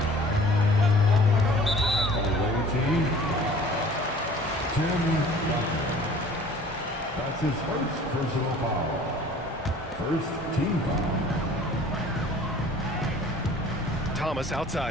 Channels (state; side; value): normal; both; correlation 0.49